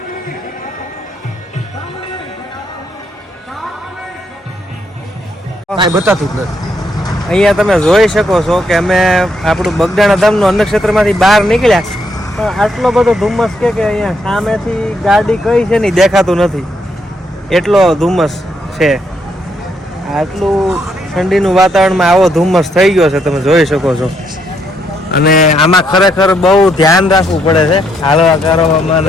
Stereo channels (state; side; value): normal; both; correlation 0.74